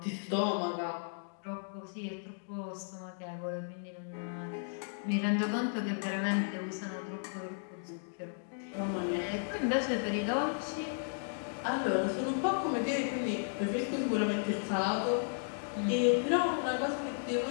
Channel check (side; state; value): right; silent; digital silence